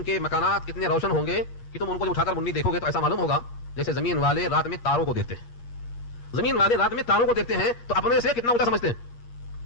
کے مکانات اتنے روشن ہوں گے کہ تم ان کو جب اٹھا کر منی دیکھو گے تو ایسا معلوم ہوگا جیسے زمین والے رات میں تاروں کو دیکھتے ہیں. زمین والے رات میں تاروں کو دیکھتے ہیں تو اپنے سے کتنا اونچا سمجھتے ہیں.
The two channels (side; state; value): right; late; 8.5 ms